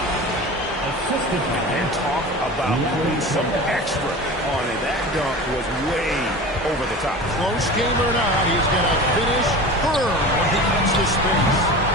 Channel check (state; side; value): normal; both; correlation 0.34